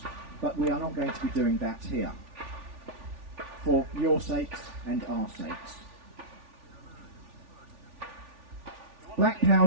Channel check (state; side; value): late; left; 3.4 ms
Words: but we are not going to be doing that here, for your sakes and our sakes. Black